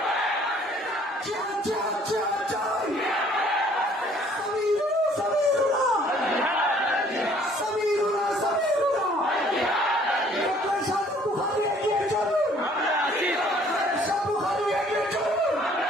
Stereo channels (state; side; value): normal; both; correlation 0.58